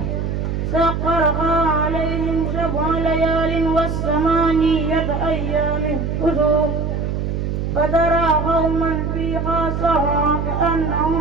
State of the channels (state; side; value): noise; right; hum, 2 dB below the sound